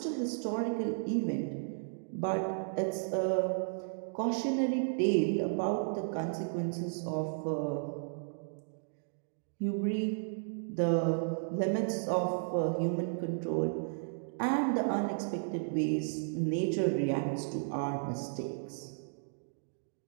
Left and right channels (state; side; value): silent; left; digital silence